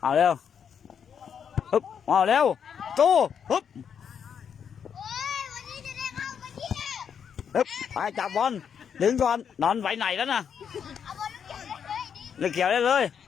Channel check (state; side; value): quieter; right; 7.6 dB